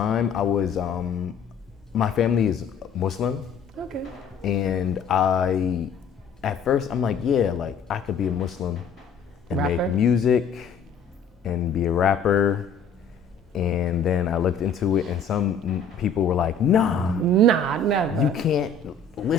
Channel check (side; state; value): right; quieter; 4.6 dB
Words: I was my family is Muslim, Okay. and at first I'm like, yeah, like I could be a Muslim and Rapper? make music and be a rapper. And then I looked into it, and some people were like, nah, Nah, never. you can't